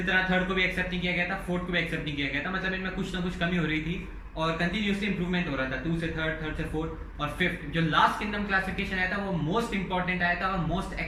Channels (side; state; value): both; identical; correlation 1.00